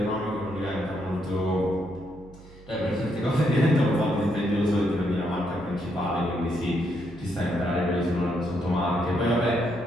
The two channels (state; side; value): noise; right; hum, 21 dB below the sound